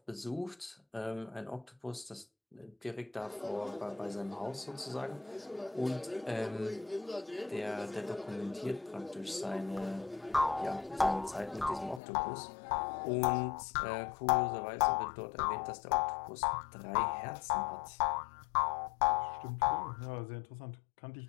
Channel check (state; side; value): drops out; right; at 12.0 s